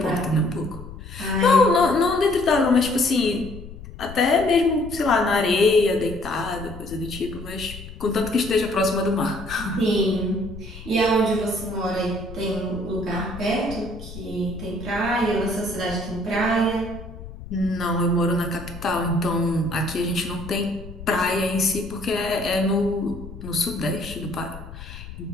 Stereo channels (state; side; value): noise; left; rumble, 13 dB below the sound